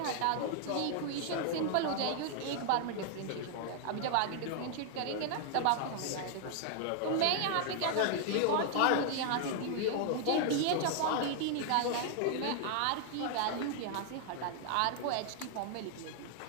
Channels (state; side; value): different; both; correlation 0.00